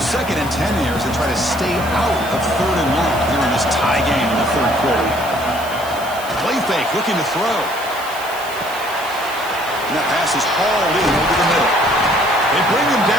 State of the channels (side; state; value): right; noise; hiss, 15 dB below the sound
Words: 2nd and 10 here as they try to stay out of 3rd and 1 here in this tie game in the third quarter. Play fake, looking to throw. And that pass is hauled in over the middle. They bring him